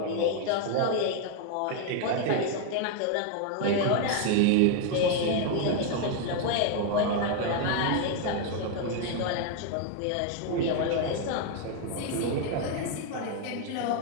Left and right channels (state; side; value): different; both; correlation 0.01